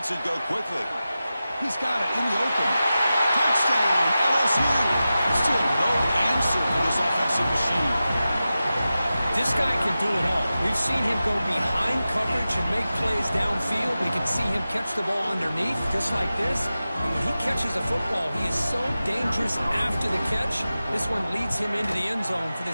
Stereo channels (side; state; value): both; inverted; correlation -0.94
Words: it go quickly. He's got it in the open. Touchdown, LSU. Still no answer for this offensive machine. This guy can do it all. We've seen him go behind coverage and make plays downfield. We can see him catch the ball underneath, just like this. And when he catches a football, he is so dangerous after the catch. This one leads him into the end zone for the